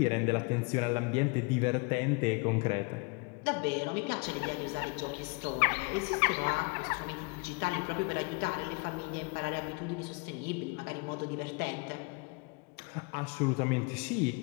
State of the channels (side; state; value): right; quieter; 31.0 dB